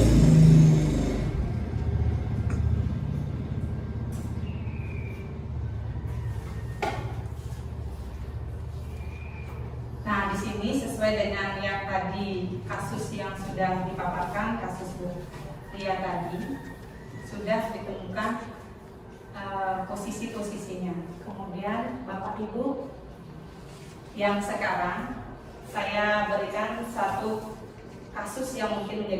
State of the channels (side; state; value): both; identical; correlation 1.00